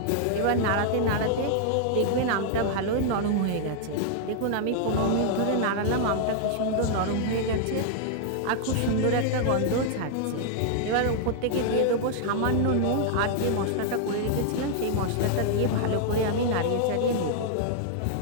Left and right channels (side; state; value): both; different; correlation -0.01